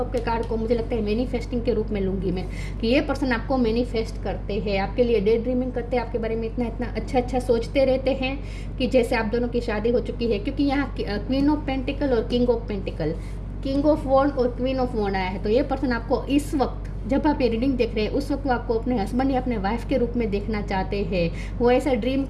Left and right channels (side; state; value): both; identical; correlation 1.00